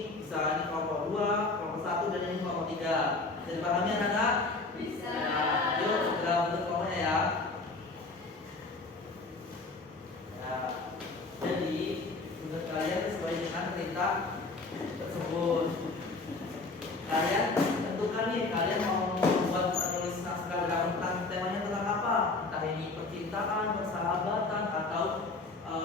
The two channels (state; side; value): quieter; right; 3.5 dB